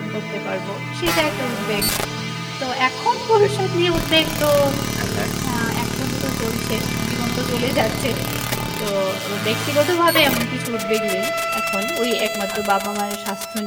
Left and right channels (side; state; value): both; identical; correlation 1.00